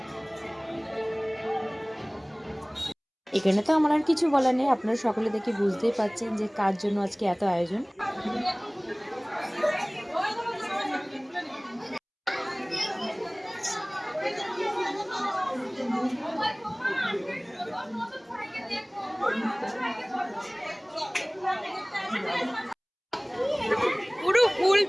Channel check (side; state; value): both; identical; correlation 1.00